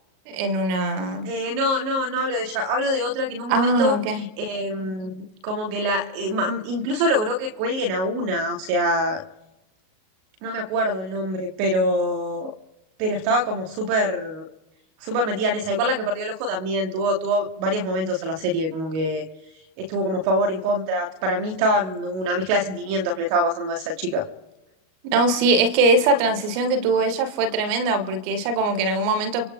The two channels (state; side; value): late; left; 38 ms